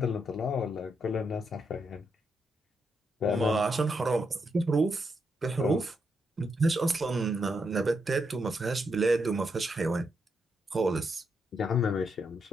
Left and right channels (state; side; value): normal; both; correlation 0.80